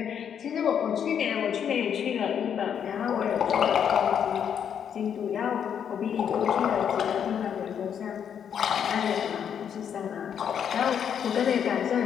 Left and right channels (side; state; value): right; quieter; 8.3 dB